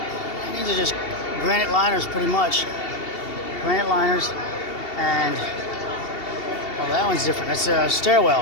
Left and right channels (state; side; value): late; right; 2.7 ms